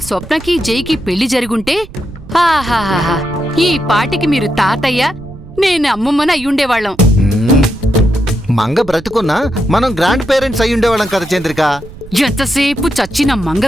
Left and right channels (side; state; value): right; noise; rumble, 17 dB below the sound